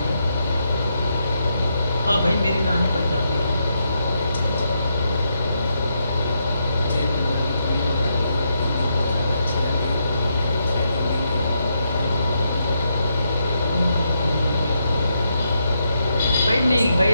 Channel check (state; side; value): inverted; both; correlation -0.81